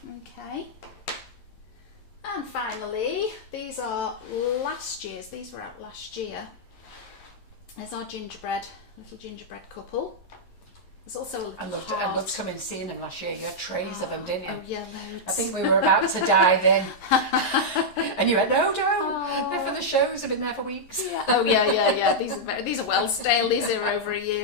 Okay. And finally, these are last year's. These were out last year. There's our little gingerbread couple. There's also a little I loved coming and seeing them last year. You had trays of them, didn't you? Oh yeah, loads. I think we were about to dive in. And you went, no, don't. They're for the shows. They've been there for weeks. Yeah. Oh yeah. These are well stale. These are over a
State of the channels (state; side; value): late; right; 11 ms